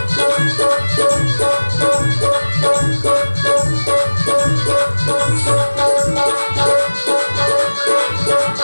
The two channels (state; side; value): inverted; both; correlation -1.00